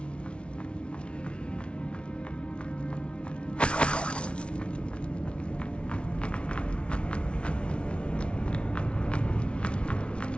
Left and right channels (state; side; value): late; right; 0.059 ms